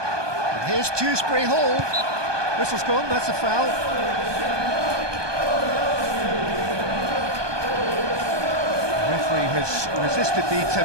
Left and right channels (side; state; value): left; late; 1.2 ms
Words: here's Dewsbury Hall. Whistle's gone, that's a foul. The referee has resisted the